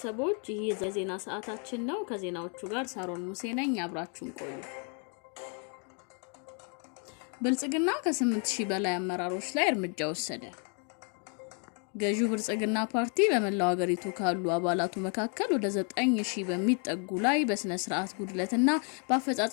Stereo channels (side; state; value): right; quieter; 39.8 dB